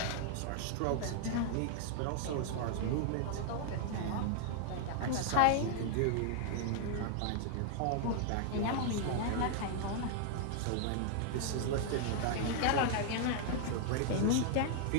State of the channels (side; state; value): both; different; correlation 0.00